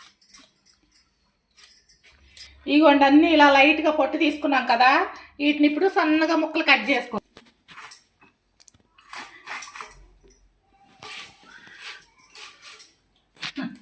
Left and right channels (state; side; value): identical; both; correlation 1.00